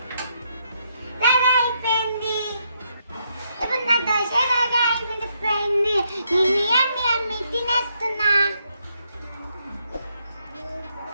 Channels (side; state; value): both; inverted; correlation -0.76